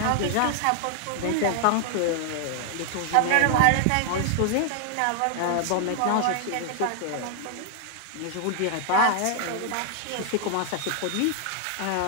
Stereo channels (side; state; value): both; different; correlation 0.00